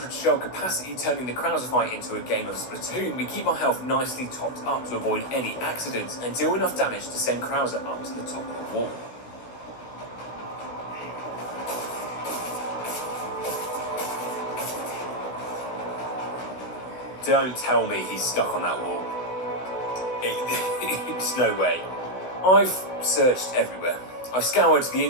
shell capacity turning the Krauser fight into a game of Splatoon, we keep our health nicely topped up to avoid any accidents and deal enough damage to send Krauser up to the top of the wall. Don't tell me he's stuck on that wall. It's no way. I've searched everywhere. I've scoured the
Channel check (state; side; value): late; right; 16 ms